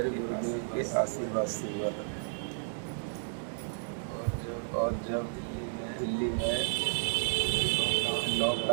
गुरुदेव के आशीर्वाद से हुआ। और जब दिल्ली में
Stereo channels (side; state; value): left; silent; digital silence